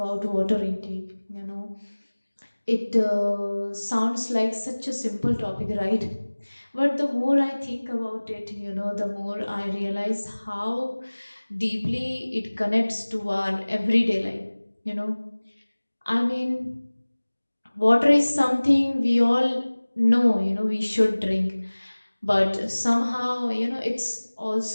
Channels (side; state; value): both; inverted; correlation -1.00